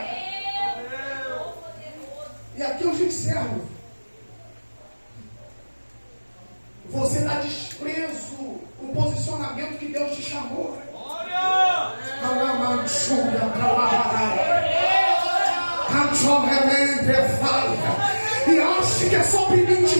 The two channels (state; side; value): inverted; both; correlation -1.00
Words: E aqui eu te encerro. Você dá desprezo o posicionamento que Deus te chamou. E acha que é só